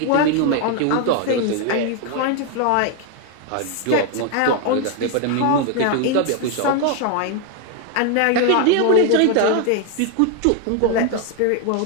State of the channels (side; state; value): both; different; correlation 0.01